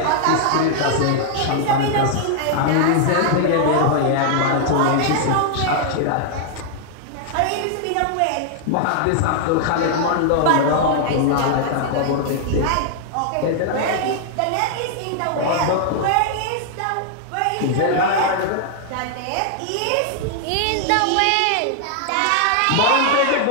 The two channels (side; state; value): both; different; correlation -0.01